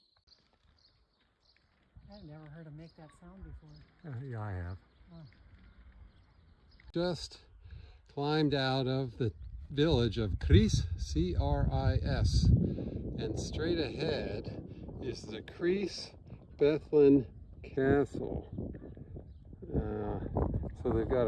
I've never heard him make that sound before. Yeah, I have. Oh. Just climbed out of the village of Cris, C-R-I-S, and straight ahead is the Cris Bethlen Castle. So they've got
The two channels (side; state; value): both; identical; correlation 1.00